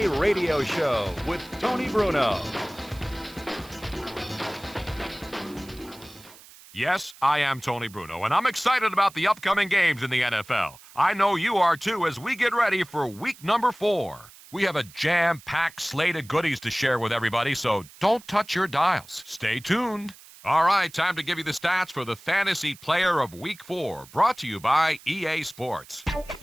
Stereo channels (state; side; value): noise; right; hiss, 21 dB below the sound